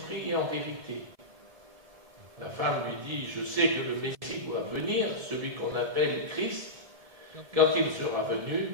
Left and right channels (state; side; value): late; left; 1.7 ms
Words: et en vérité. La femme lui dit, je sais que le Messie doit venir, celui qu'on appelle Christ. Quand il sera